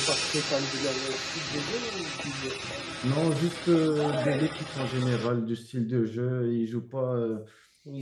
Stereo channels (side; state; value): both; identical; correlation 1.00